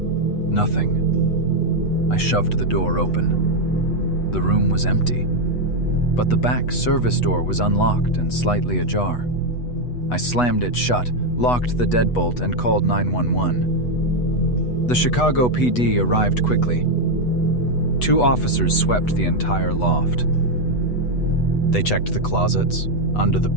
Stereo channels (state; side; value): late; right; 8.1 ms